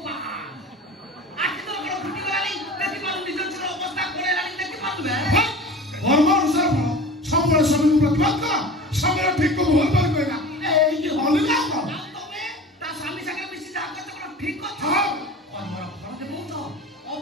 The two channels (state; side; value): normal; both; correlation 0.37